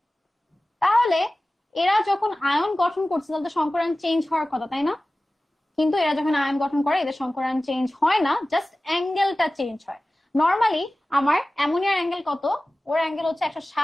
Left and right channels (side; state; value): both; normal; correlation 0.97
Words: তাহলে এরা যখন আয়ন গঠন করছে তাহলে তো সংকরণ চেঞ্জ হওয়ার কথা, তাই না? কিন্তু এরা যখন আয়ন গঠন করে এদের সংকরণ চেঞ্জ হয় না, জাস্ট অ্যাঙ্গেলটা চেঞ্জ হয়। নর্মালি আমার অ্যামোনিয়ার অ্যাঙ্গেল কত, ওর অ্যাঙ্গেল হচ্ছে